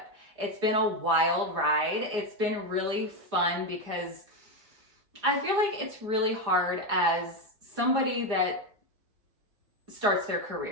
It's been a wild ride. It's been really fun because I feel like it's really hard as somebody that starts their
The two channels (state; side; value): late; left; 4.9 ms